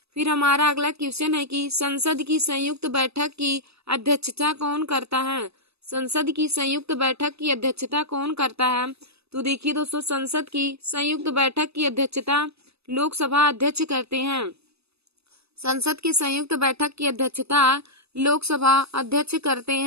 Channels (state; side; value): late; left; 0.78 ms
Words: फिर हमारा अगला क्वेश्चन है कि संसद की संयुक्त बैठक की अध्यक्षता कौन करता है। संसद की संयुक्त बैठक की अध्यक्षता कौन करता है। तो देखिए दोस्तों, संसद की संयुक्त बैठक की अध्यक्षता लोकसभा अध्यक्ष करते हैं। संसद की संयुक्त बैठक की अध्यक्षता लोकसभा अध्यक्ष करते